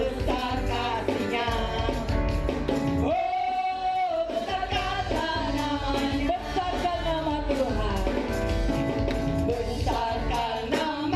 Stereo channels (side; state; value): both; identical; correlation 1.00